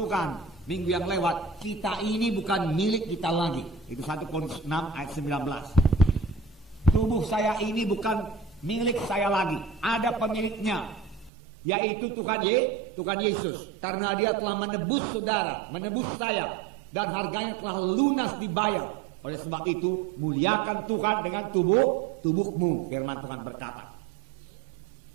minggu yang lewat, kita ini bukan milik kita lagi. Itu 1 Korintus 6 ayat 19. Tubuh saya ini bukan milik saya lagi, ada pemiliknya, yaitu Tuhan Yesus. Karena Dia telah menebus saudara, menebus saya, dan harganya telah lunas dibayar. Oleh sebab itu, muliakan Tuhan dengan tubuhmu, firman Tuhan berkata.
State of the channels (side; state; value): left; drops out; at 11.3 s